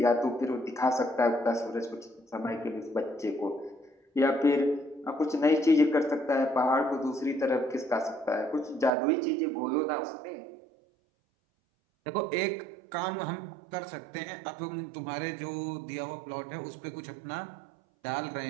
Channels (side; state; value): left; drops out; at 8.9 s